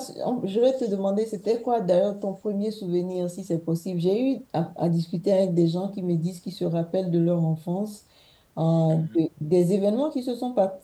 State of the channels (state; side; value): identical; both; correlation 1.00